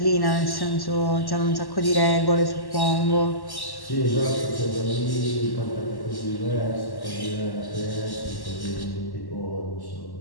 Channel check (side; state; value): right; late; 1.1 ms